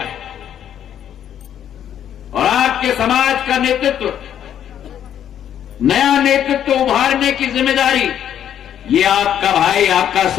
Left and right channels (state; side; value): quieter; right; 9.9 dB